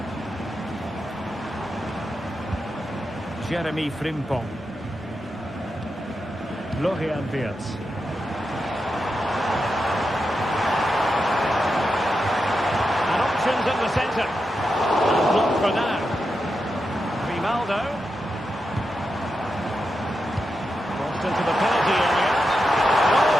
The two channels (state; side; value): normal; both; correlation 0.88